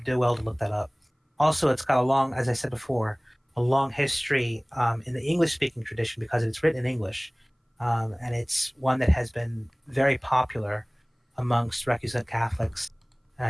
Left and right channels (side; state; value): both; identical; correlation 1.00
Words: do well to look that up. Also, it's got as I said before, a long history in the English-speaking tradition because it's written in English, and it's one that has been very popular amongst recusant Catholics,